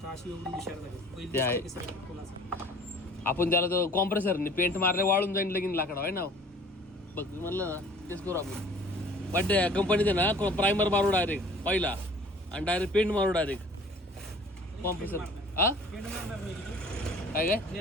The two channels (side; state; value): both; normal; correlation 0.50